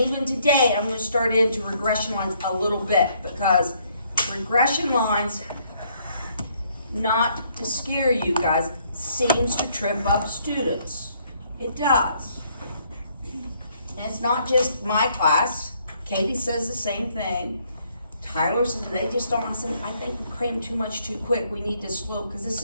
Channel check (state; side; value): inverted; both; correlation -0.67